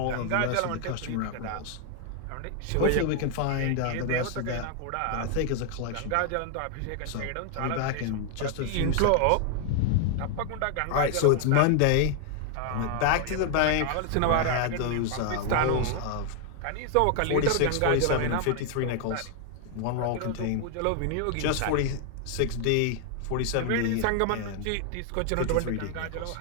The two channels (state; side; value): different; both; correlation 0.00